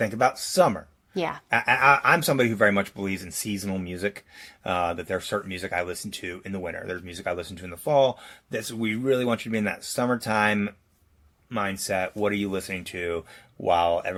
about summer. Yeah. I'm somebody who very much believes in seasonal music, that there's certain music I listen to in the winter. There's music I listen to in the fall. We really want you to be in that summertime mindset. What are you listening to while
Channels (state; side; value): identical; both; correlation 1.00